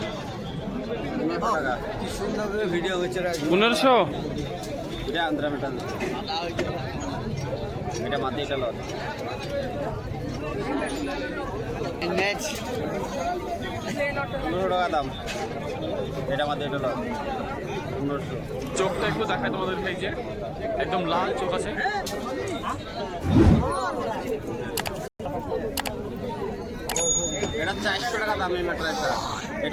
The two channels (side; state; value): both; identical; correlation 1.00